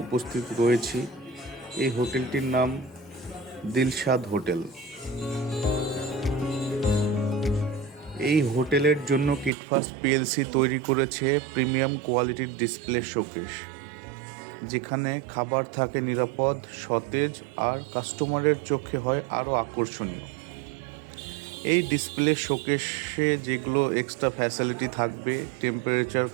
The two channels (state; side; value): drops out; left; at 9.5 s